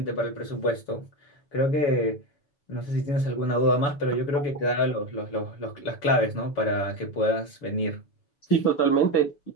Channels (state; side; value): late; right; 7.0 ms